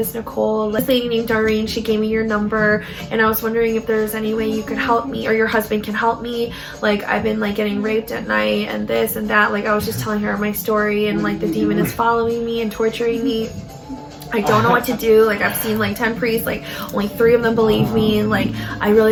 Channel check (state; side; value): identical; both; correlation 1.00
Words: Nicole. This lady named Doreen, she gave me your number, and I was wondering if there's any way you could help me, or your husband can help me. Like, I've been like getting raped at night and this and that. Like, I was just telling her my story, and like the demon is following me and torturing me. I don't know what to do. Like, I've seen like 10 priests, like only 3 of them believe me, and like I